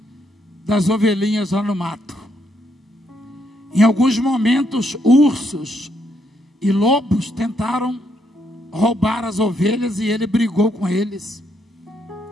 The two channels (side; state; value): both; normal; correlation 0.75